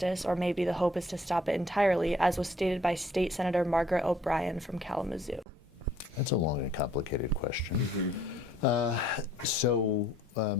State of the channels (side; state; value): both; normal; correlation 0.61